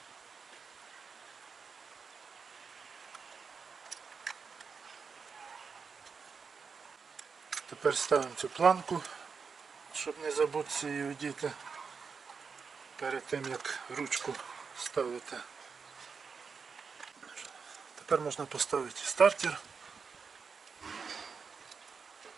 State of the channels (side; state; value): left; quieter; 5.5 dB